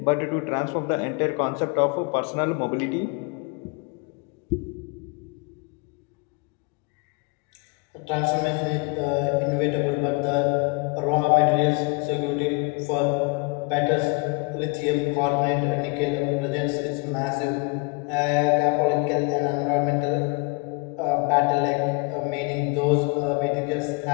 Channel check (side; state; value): right; quieter; 30.2 dB